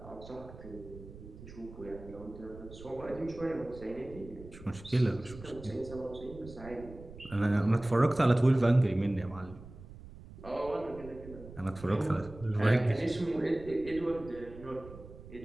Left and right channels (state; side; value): noise; right; rumble, 16 dB below the sound